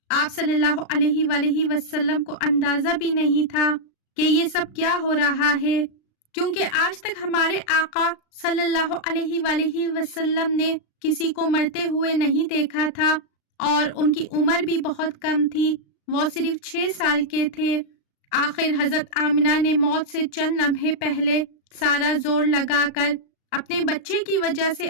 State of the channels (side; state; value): right; late; 36 ms